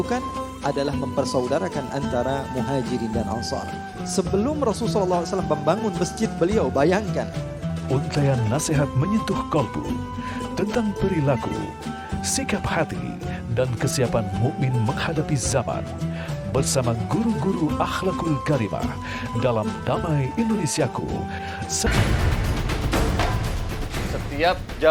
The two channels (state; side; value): identical; both; correlation 1.00